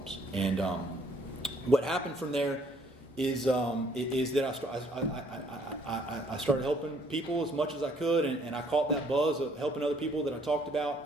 And what happened from there is that I started helping people as much as I could, and I caught that buzz of helping other people that I talked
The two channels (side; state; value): both; normal; correlation 0.63